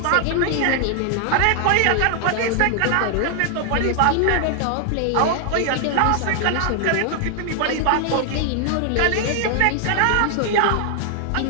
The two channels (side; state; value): both; different; correlation 0.00